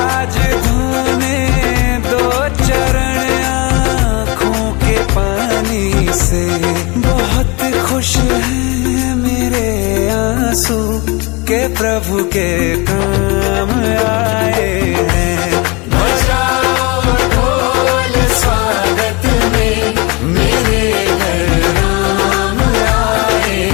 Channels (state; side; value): quieter; right; 27.1 dB